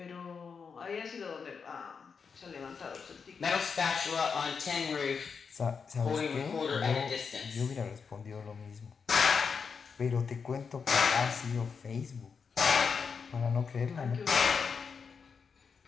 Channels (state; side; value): quieter; right; 5.8 dB